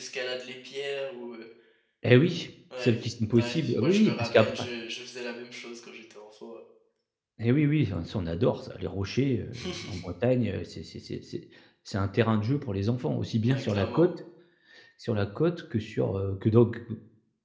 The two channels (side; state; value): both; identical; correlation 1.00